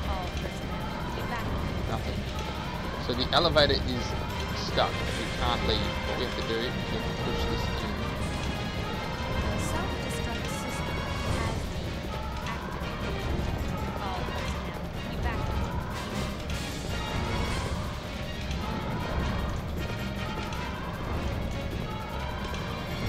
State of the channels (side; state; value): both; identical; correlation 1.00